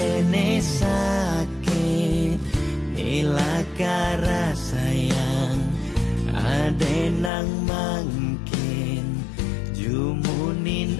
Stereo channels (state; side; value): drops out; right; at 7.3 s